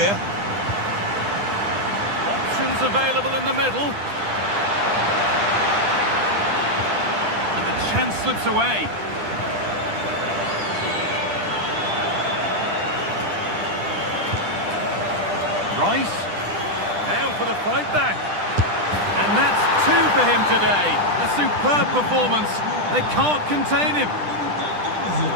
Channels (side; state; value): left; late; 10 ms